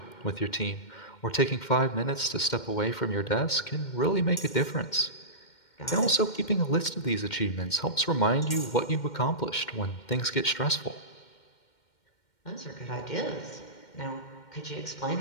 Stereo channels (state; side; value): late; right; 2.1 ms